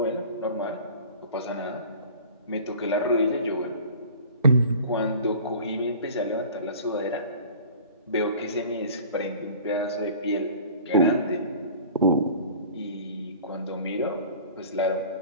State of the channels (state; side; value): inverted; both; correlation -0.43